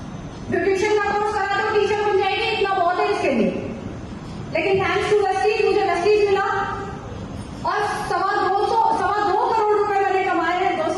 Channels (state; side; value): identical; both; correlation 1.00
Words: ब्यूटिशियन का कोर्स करा तो टीचर बन जाएगी, इतना बहुत है इसके लिए। लेकिन थैंक्स टू वेस्टीज मुझे वेस्टीज मिला, और 2.25 करोड़ रुपए मैंने कमाए हैं।